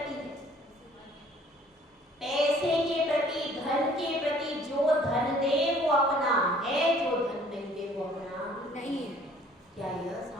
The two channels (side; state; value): both; normal; correlation 0.56